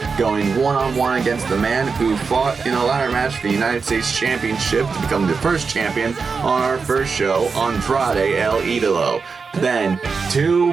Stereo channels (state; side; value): quieter; left; 5.0 dB